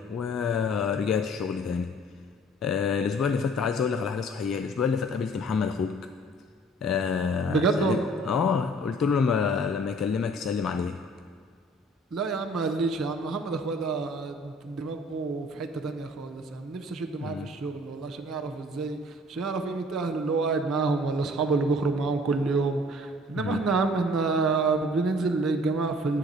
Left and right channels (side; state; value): both; normal; correlation 0.53